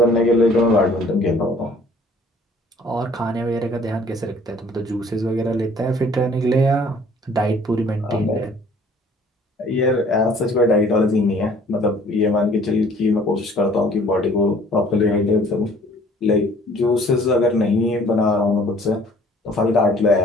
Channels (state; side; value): normal; both; correlation 0.54